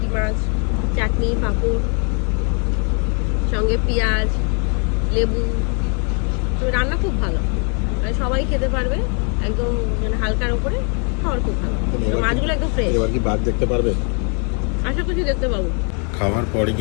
মাছ, চাটনি, পাঁপড়, সঙ্গে পেঁয়াজ, লেবু। তো রান্না খুব ভালো, মানে সবাই খেতে পারবে, একদম মানে হালকার উপরে, খাওয়ার খুব ভালো। মাছগুলো একদম ফ্রেশ। এবার কি বাঘ দেখতে পারবে? আশা করছি দেখতে পাবো। খাওয়ার পরে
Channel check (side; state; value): right; quieter; 39.7 dB